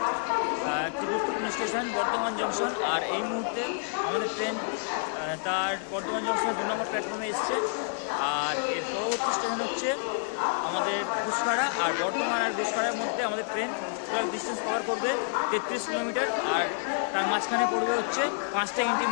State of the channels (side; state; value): right; silent; 59 dB below the other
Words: একটি গুরুত্বপূর্ণ স্টেশন বর্ধমান জংশন। আর এই মুহূর্তে আমাদের ট্রেন তার বর্ধমান জংশনের 2 নম্বর প্ল্যাটফর্মে এসছে। আর এর পরবর্তী স্টেশন হচ্ছে আমাদের ঘুষখাড়া। আর বর্ধমান আর ঘুষখাড়ার মধ্যে আমাদের ট্রেন টোটাল ডিস্টেন্স কভার করবে 33 কিলোমিটার। আর তার মাঝখানে পড়বে হচ্ছে 5টা